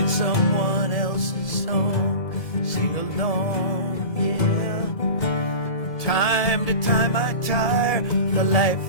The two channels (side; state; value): right; late; 1.7 ms